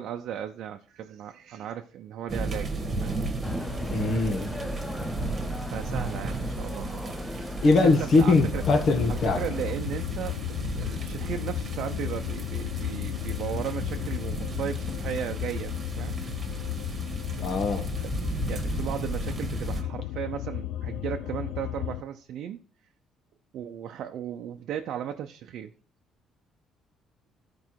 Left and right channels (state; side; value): normal; both; correlation 0.65